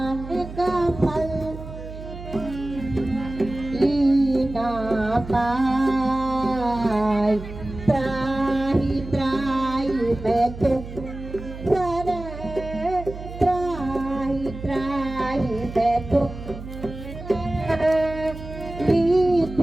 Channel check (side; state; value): right; noise; hum, 11 dB below the sound